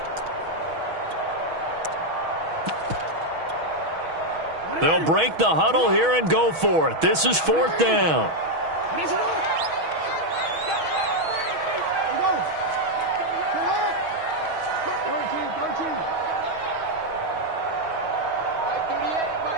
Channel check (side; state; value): left; late; 6.2 ms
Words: They'll break the huddle here and go for it. This is 4th down.